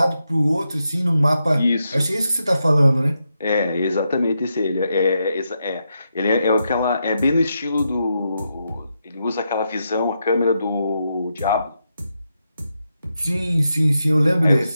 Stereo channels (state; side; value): inverted; both; correlation -0.84